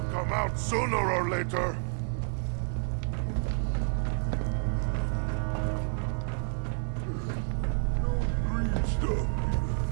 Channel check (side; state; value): left; silent; digital silence